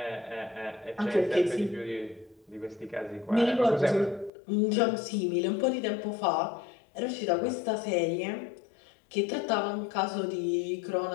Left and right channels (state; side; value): drops out; right; at 4.3 s